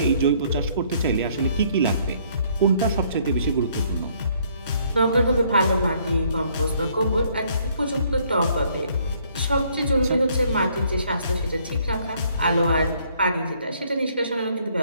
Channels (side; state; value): both; inverted; correlation -0.65